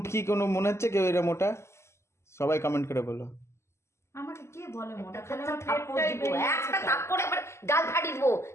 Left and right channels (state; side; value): late; right; 0.13 ms